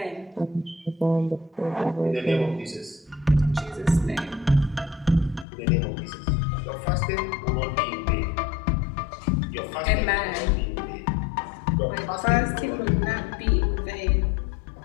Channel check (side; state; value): right; drops out; at 5.5 s